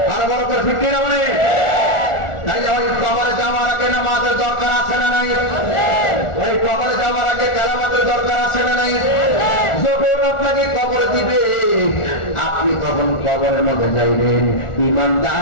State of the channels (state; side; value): late; right; 1.4 ms